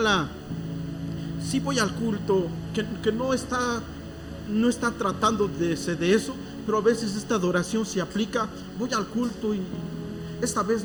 sí voy al culto, que no está tratando de eso, pero a veces esta adoración se aplica. Voy al culto y esta vez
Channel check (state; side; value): identical; both; correlation 1.00